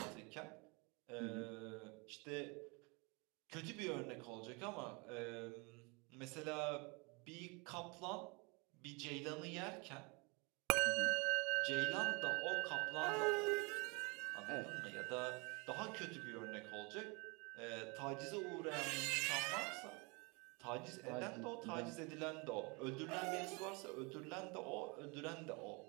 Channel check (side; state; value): left; quieter; 29.7 dB